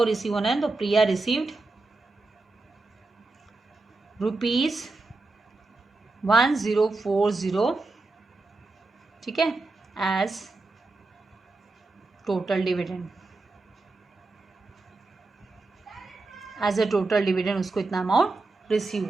रिसीव होना है, तो प्रिया रिसीव्ड ₹1040, ठीक है, as total dividend. As a total dividend उसको इतना अमाउंट रिसीव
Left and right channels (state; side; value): quieter; left; 3.4 dB